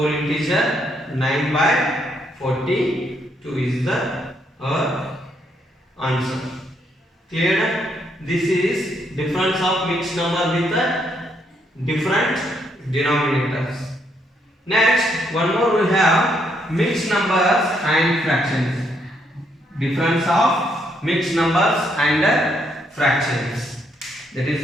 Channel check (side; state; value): both; normal; correlation 0.74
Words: integer 9 by 42 is the answer. Clear? This is difference of mixed number with different denominators. Next, one more we have mixed numbers and fractions. Difference of mixed numbers and fractions. That